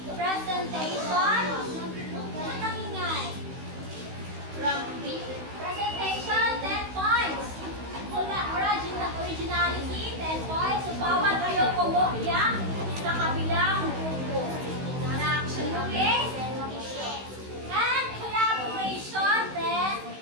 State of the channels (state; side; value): late; left; 16 ms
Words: Presentation. Matangingay. Presentation, 10 points. Originality, 10 points. So, bawal kayo kumopya sa kabilang grupo. Okay? And collaboration,